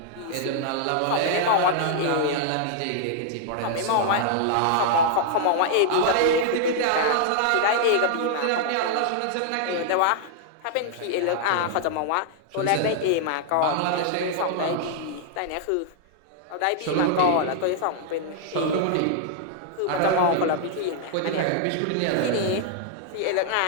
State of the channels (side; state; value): both; different; correlation -0.01